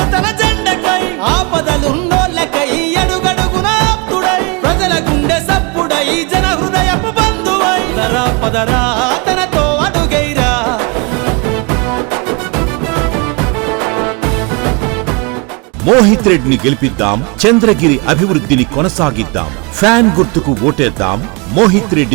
తన జెండకై ఆపదలున్నోళ్ళకై అడుగడుగున ఆప్తుడై ప్రజల గుండె సప్పుడై జన హృదయపు బంధువై దరా పదరా తనతో అడుగైరా మోహిత్ రెడ్డిని గెలిపిద్దాం, చంద్రగిరి అభివృద్ధిని కొనసాగిద్దాం. ఫ్యాన్ గుర్తుకు ఓటేద్దాం, మోహిత్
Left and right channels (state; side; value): quieter; left; 30.0 dB